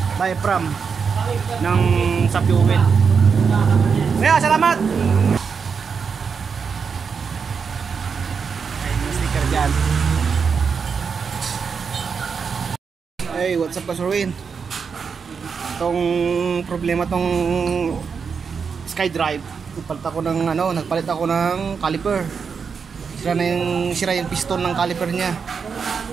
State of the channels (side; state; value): left; quieter; 5.9 dB